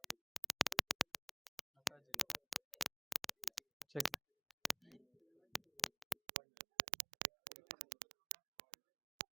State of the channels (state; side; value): drops out; left; at 6.2 s